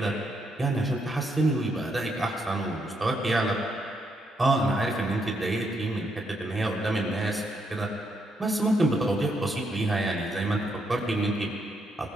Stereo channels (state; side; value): normal; both; correlation 0.77